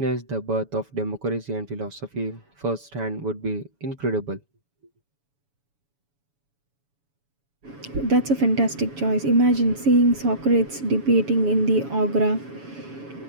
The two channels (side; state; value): left; late; 7.1 ms